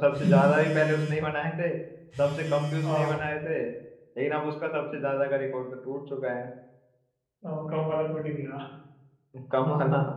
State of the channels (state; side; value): identical; both; correlation 1.00